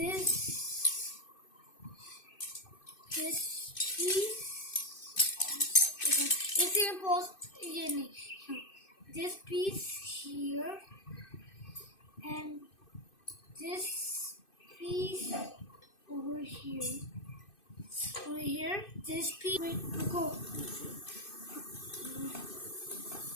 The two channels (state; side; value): late; right; 2.6 ms